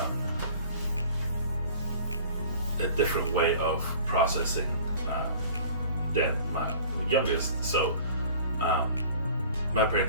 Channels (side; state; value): both; inverted; correlation -0.46